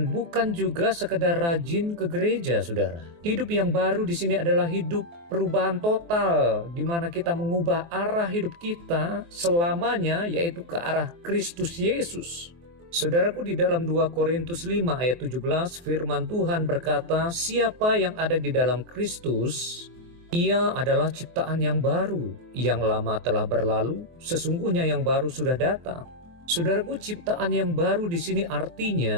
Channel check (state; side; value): late; left; 23 ms